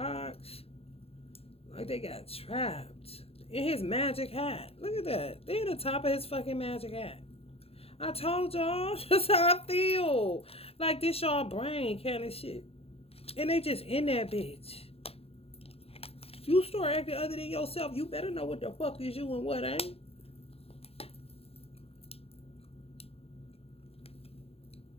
Like they got trapped in his magic hat. Look at that. They at the top of his fucking magic hat. I told y'all, that's how I feel. Like this y'all brain kind of shit. And they just in that bitch. If you start acting other than yourself, you better know what the fuck is you and what ain't.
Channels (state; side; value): late; right; 0.28 ms